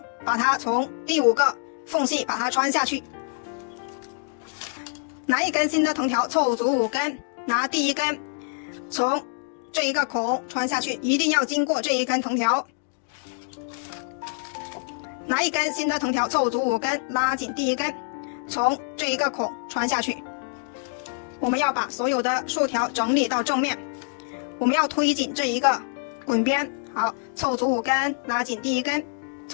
把它从第5个缝隙把它穿下去。拿一根新的藤条凑足5根，拿第1根，从这一个孔穿下去，一定要经过这一根藤条。拿一根新的藤条凑足5根，拉紧第1根，从这一个孔穿下去。我们要把所有的竖条整理到正面，我们要推紧这一个滚边。好，凑足5根，拉紧第1根，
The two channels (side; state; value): right; silent; digital silence